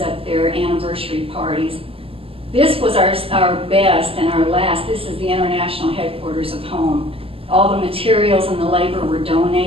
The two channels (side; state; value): left; late; 0.27 ms